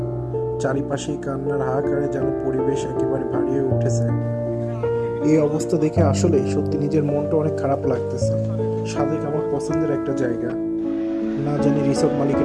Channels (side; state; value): both; identical; correlation 1.00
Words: চারিপাশে কান্নার হাহাকারে যেন পরিবেশ একেবারে ভারী হয়ে উঠেছে। এই অবস্থা দেখে আসলে সত্যি নিজের মনটা অনেক খারাপ লাগতেছে। সাজেক আমার পছন্দের একটা জায়গা। না জানি রিসোর্ট